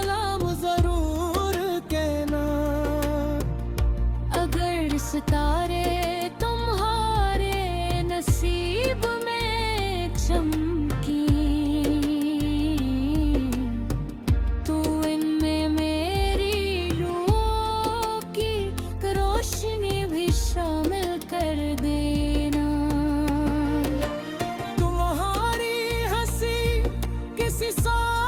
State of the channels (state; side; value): identical; both; correlation 1.00